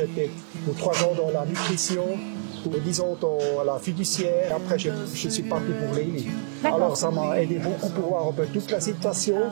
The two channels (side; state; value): left; silent; digital silence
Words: pour 3 ans dans la nutrition, pour 10 ans dans la fiduciaire. Après je suis parti pour Lely. Alors ça m'a aidé beaucoup pour voir un peu toute la situation